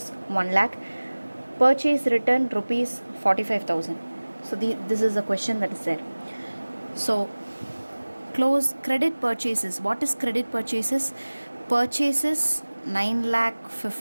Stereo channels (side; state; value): both; inverted; correlation -1.00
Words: 1 lakh, purchase return rupees 45,000. So this is the question that is there. So close credit purchases. What is credit purchases? Purchases